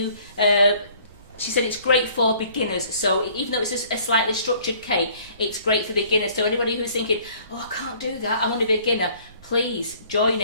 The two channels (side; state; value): both; inverted; correlation -0.56